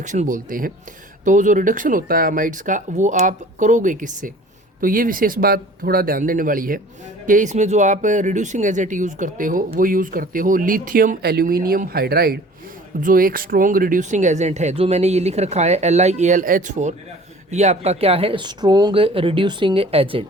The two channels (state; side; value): normal; both; correlation 0.47